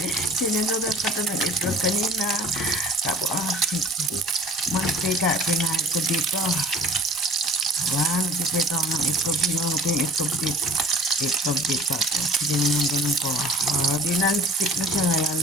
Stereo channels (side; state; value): both; normal; correlation 0.47